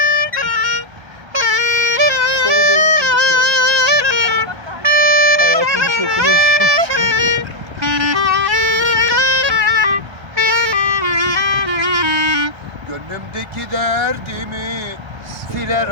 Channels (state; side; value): late; left; 1.3 ms